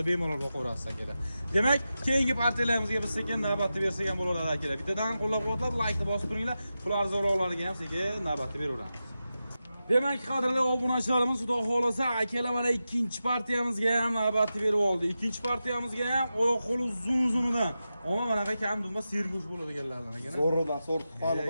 bemalol boqaverasiz akalar. Demak, keyingi partiyalarimizga biz sekin navbatni bersak ham bo'laveradi akalar. Bittadan qo'llab-quvvatlab, like bosib turinglar. Ular zo'rlovlariga ham sekin navbatni beraveramiz. Demak, qadrli obunachilarimiz, xudo xolasa, akalar mana ikkinchi partiyamizga ham navbatni berib oldi. Ikkinchi partiyamizga ham oyoq qo'li uzun-uzunidan. Ammo manaqa kam dumba sergo'sh bo'ladiganlardan ekan. Zo'ridan sort qani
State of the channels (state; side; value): inverted; both; correlation -0.91